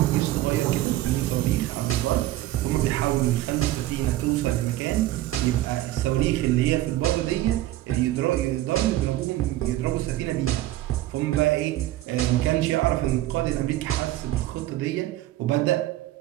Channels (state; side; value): quieter; left; 15.3 dB